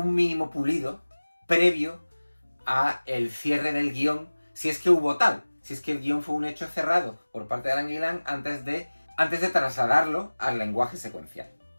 mínimo pulido previo a el cierre del guión, si es que hubo tal. Si es que el guión fue un hecho cerrado por parte de Alan Gillan antes de trasladarlo al lenguaje secuencial.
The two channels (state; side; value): inverted; both; correlation -1.00